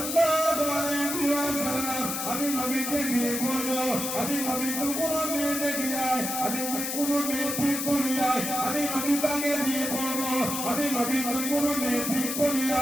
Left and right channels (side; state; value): left; noise; hiss, 3 dB below the sound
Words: আলাইহি ওয়াসাল্লাম আমি নবীকে বিয়ে করব আমি নবী তো কোন মেয়ে দেখি নাই আমি কোন মেয়ে ঠিক করি নাই আমি নবী তাকে বিয়ে করব আমি নবী তো কোন মেয়ে ঠিক করি